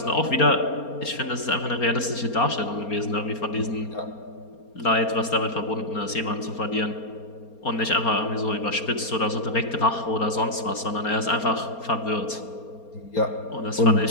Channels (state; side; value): late; right; 4.3 ms